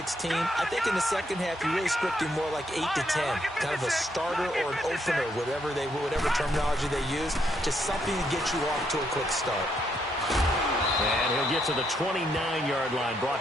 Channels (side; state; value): both; normal; correlation 0.75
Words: I think in the second half, you're really scripting more like 8 to 10. Kind of a starter or an opener, whatever terminology they use. Just something to get you off to a quick start. And he'll get to the 29-yard line,